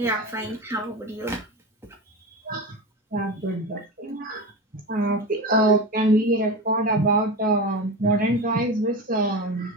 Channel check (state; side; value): normal; both; correlation 0.24